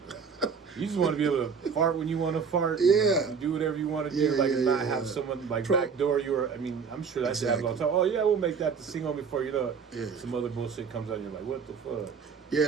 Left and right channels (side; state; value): left; quieter; 5.9 dB